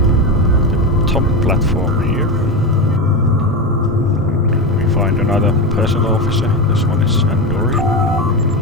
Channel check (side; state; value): both; normal; correlation 0.17